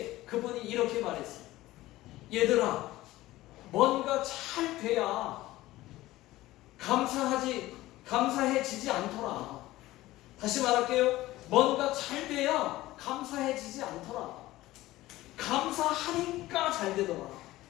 그분이 이렇게 말했어요. 얘들아, 뭔가 잘 돼야 감사해지지 않더라. 다시 말할게요. 뭔가 잘 돼야 감사해지지 않더라. 감사하니까 잘 되더라.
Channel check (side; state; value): right; quieter; 17.0 dB